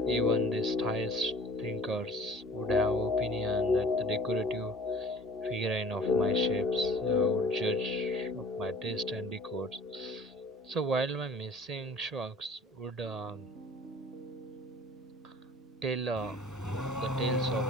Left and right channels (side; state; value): both; normal; correlation 0.47